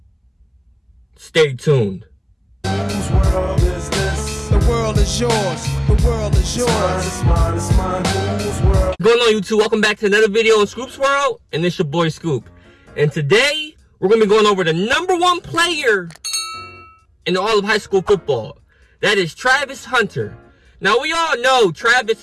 Stay tuned. Whose world is this? The world is yours. The world is yours. It's mine. Whose world? What's going on, YouTube? Welcome back to another video on Scoop's World, and it's your boy Scoop. And today we're gonna be going over the number one player in all of high school football. That is Travis Hunter. Now we all know Travis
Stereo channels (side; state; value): both; identical; correlation 1.00